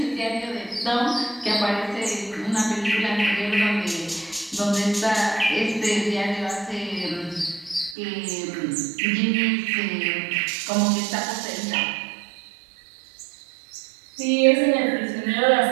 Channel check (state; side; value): drops out; left; at 8.0 s